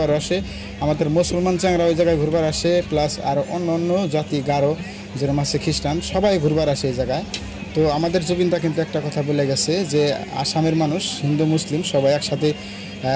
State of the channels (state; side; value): identical; both; correlation 1.00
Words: আসে। আমাদের মুসলমান চাংরা ওই জায়গায় ঘুরবার আসে, প্লাস আর অন্য অন্য জাতি গারো যেরকম আছে, খ্রিস্টান, সবাই ঘুরবার আসে এই জায়গায়। তো আমাদের জুবিনদা কিন্তু একটা কথা বলে গেছে যে আসামের মানুষ হিন্দু মুসলিম সবাই একসাথে